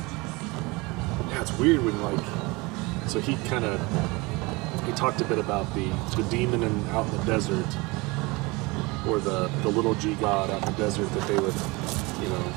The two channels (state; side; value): quieter; left; 24.6 dB